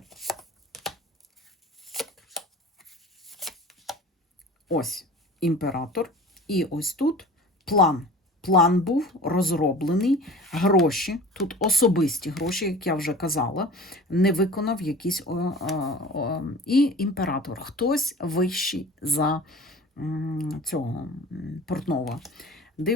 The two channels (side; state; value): both; normal; correlation 0.40